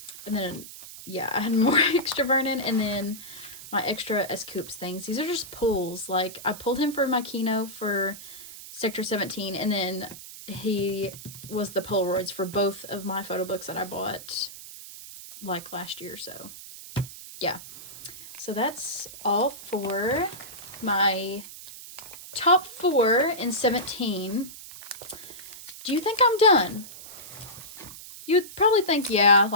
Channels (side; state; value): right; noise; hiss, 14 dB below the sound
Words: And then, yeah, I had more extra Vernon, and then my extra S-Coops things. These are just pulls. Like, I pulled him for my Kino for Sector 17, and then he was the Polaroids for both of my photo books that I bought, like, last year, so, yeah. So that's all for my top 4 in 17. Do you think I'm done? You'd probably think, yeah,